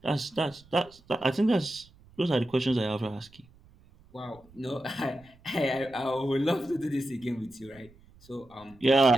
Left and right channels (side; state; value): right; noise; rumble, 27 dB below the sound